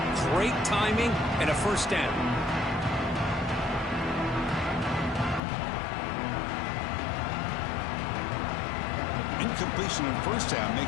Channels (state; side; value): drops out; right; at 5.4 s